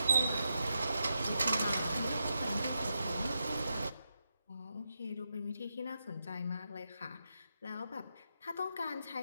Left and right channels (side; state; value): both; inverted; correlation -0.86